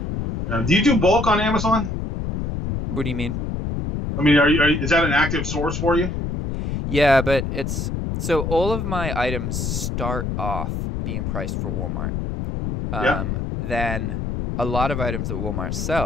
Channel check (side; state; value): left; noise; rumble, 3 dB below the sound